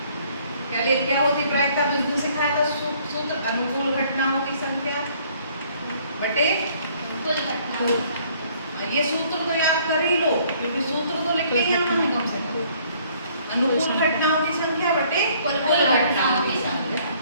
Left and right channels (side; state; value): both; inverted; correlation -0.61